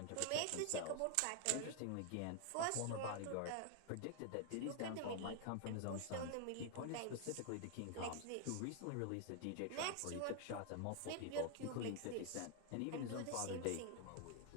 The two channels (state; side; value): different; both; correlation 0.00